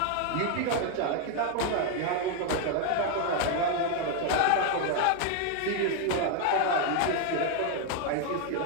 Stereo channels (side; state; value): both; different; correlation 0.01